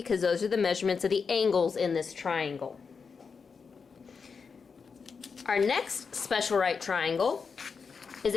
those are the measurements of the angles in this triangle. Our next special right triangle is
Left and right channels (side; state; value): right; quieter; 5.4 dB